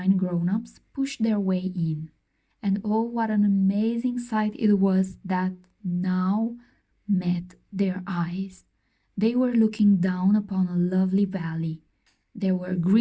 grown-ups pushed their way in. And oh, what an amazing sight it was that now met their eyes. They were looking down upon a lovely valley. There were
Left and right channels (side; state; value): both; identical; correlation 1.00